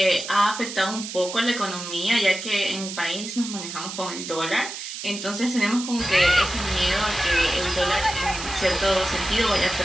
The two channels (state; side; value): noise; right; hiss, 8 dB below the sound